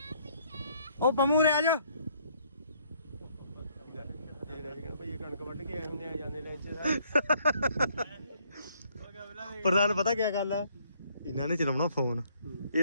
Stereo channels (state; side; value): inverted; both; correlation -0.66